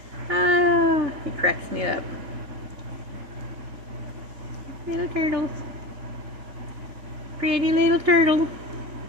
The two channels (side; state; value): left; late; 3.5 ms